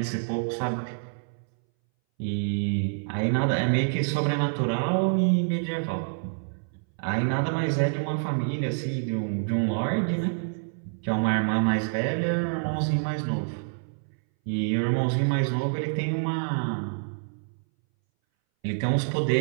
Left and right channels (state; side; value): silent; left; 60 dB below the other